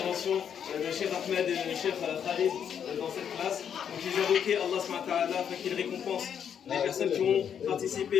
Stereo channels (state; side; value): quieter; right; 8.2 dB